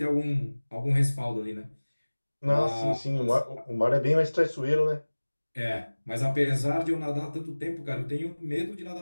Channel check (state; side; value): inverted; both; correlation -1.00